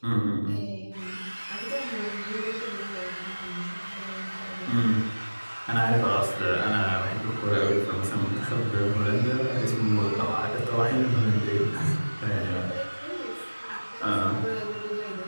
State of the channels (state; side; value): inverted; both; correlation -1.00